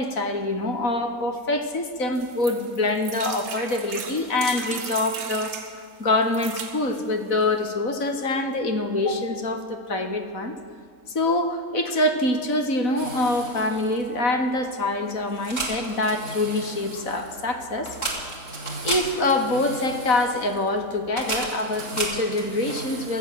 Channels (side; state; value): right; late; 4.0 ms